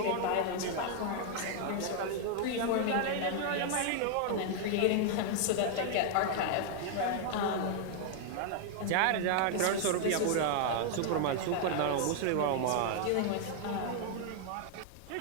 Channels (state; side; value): different; both; correlation 0.00